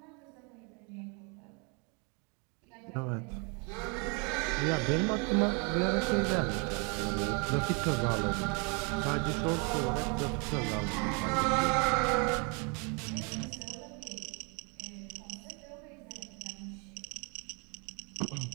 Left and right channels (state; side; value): quieter; left; 33.7 dB